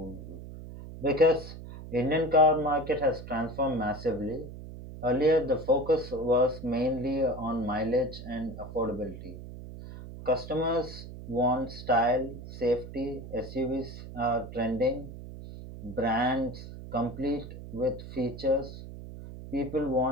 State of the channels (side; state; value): right; noise; hum, 12 dB below the sound